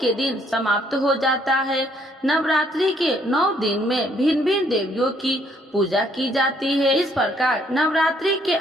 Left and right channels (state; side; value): normal; both; correlation 0.67